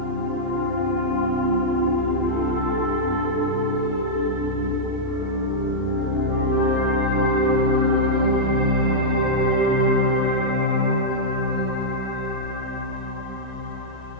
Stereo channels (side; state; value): both; normal; correlation -0.07